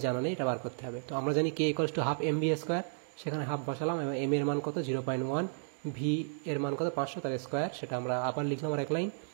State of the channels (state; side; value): silent; left; digital silence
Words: জানা নেই, এটা বার করতে হবে। তো আমরা জানি K = ½ mv², সেখানে হাফ বসালাম, এবং m এর মান কত 0.1, v এর মান কত 500, তার স্কোয়ার, সেটা আমরা আবার লিখলাম আর এক লাইন।